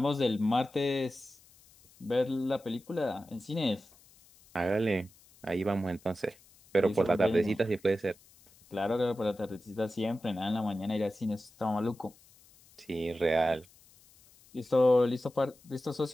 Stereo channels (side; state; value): left; noise; hiss, 27 dB below the sound